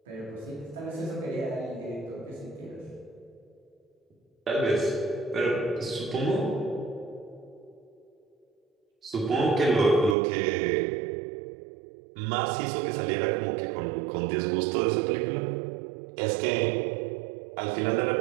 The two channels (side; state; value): left; drops out; at 10.2 s